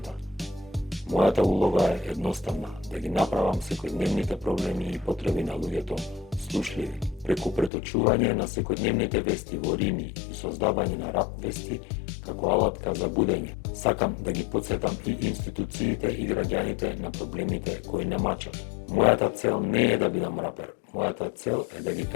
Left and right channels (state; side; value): drops out; right; at 7.7 s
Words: Мојата улога е едноставна, да ги направам секојдневните проблеми и потреби на луѓето слушливи. Преку преточување на секојдневните вести во рими и создавање на рап вести како алатка за будење, сакам да ги потсетам и институциите и граѓаните на проблемите кои не мачат. Мојата цел не е да бидам рапер, мојата цел е да ги